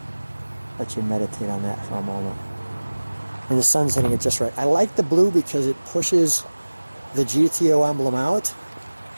Let you meditate on that for a moment. And the sun's hitting it just right. I like the blue because it pushes the GTO emblem out.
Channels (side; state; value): both; inverted; correlation -1.00